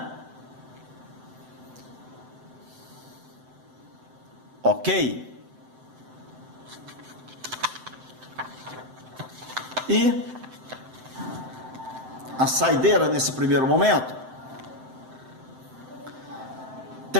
Ok? E a saideira nesse primeiro momento,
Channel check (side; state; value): left; late; 7.8 ms